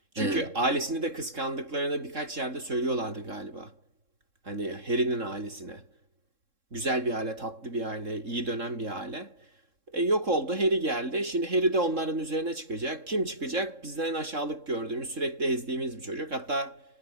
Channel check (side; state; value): left; late; 3.7 ms